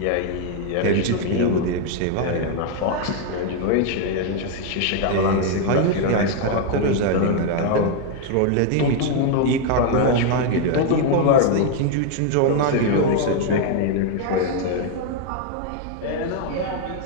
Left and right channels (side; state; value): both; different; correlation 0.00